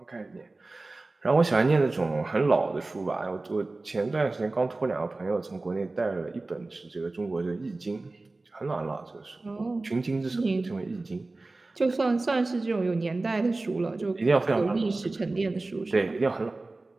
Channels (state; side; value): quieter; left; 3.2 dB